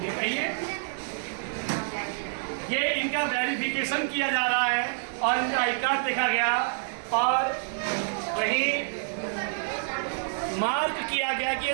ये इनका वेरिफिकेशन किया जा रहा है और इनका आई कार्ड देखा गया और वही मार्क किया गया कि ये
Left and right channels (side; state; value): left; silent; digital silence